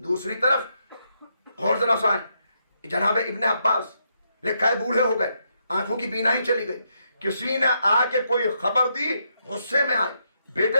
طرف اور ذرا سائیں, جناب ابن عباس لکھا ہے بوڑھے ہو گئے, آنکھوں کی بینائی چلی گئی, کسی نے آ کے کوئی خبر دی, غصے میں آئے,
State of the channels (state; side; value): inverted; both; correlation -0.79